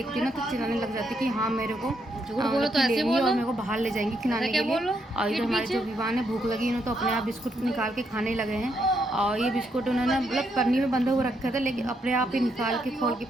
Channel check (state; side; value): normal; both; correlation 0.77